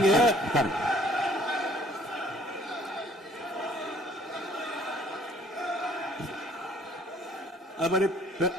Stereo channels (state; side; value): normal; both; correlation 0.59